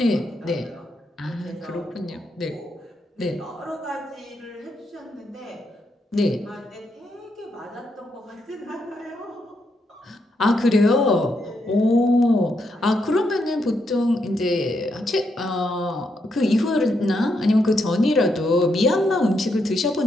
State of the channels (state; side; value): normal; both; correlation 0.80